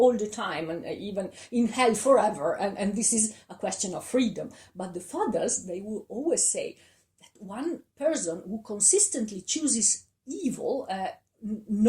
the time, and even in hell forever, and this is a question of freedom. But the fathers, they will always say that one person who consistently chooses evil,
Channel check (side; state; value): both; identical; correlation 1.00